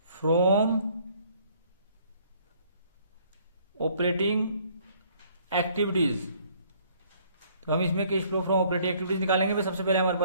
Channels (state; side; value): inverted; both; correlation -0.61